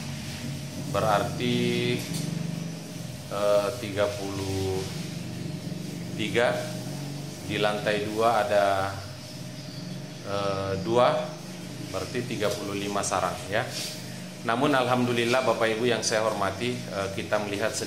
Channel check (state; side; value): identical; both; correlation 1.00